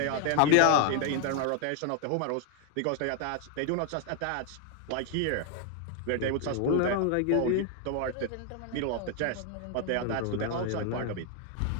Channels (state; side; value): different; both; correlation 0.00